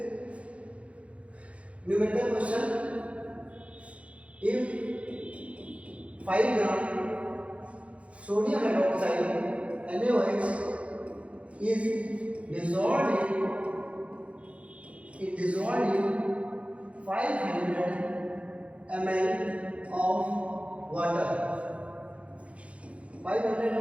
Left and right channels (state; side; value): late; left; 0.063 ms